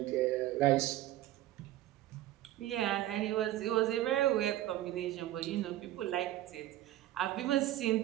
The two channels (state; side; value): quieter; left; 14.4 dB